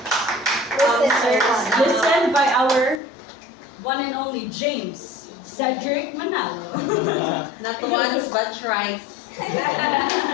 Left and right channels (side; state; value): right; drops out; at 3.0 s